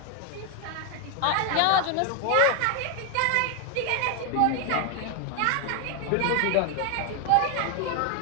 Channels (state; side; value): different; both; correlation 0.01